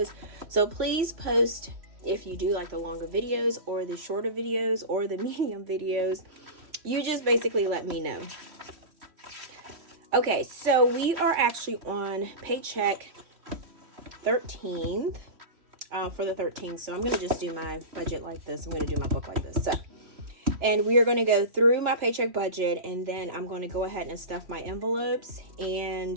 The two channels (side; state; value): left; late; 3.0 ms